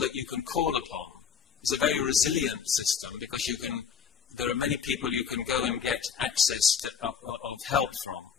you can call upon. It's a very resilient system because there are many people you can go and get access of help from.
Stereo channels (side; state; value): right; quieter; 7.1 dB